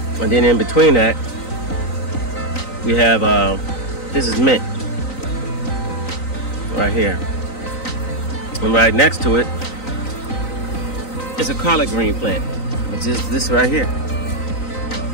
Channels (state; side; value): late; right; 3.9 ms